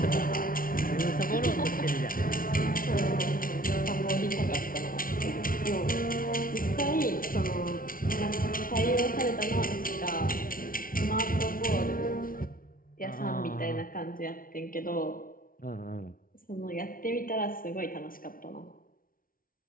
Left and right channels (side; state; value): right; late; 0.42 ms